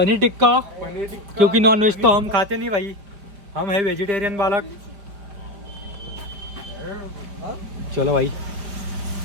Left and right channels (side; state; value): left; late; 5.0 ms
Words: टिक्का, टिक्का क्योंकि नॉन वेज तो हम खाते नहीं भाई, हम है वेजिटेरियन बालक. चलो भाई,